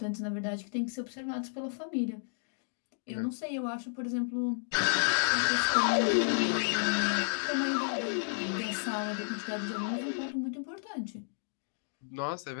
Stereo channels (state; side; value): silent; right; digital silence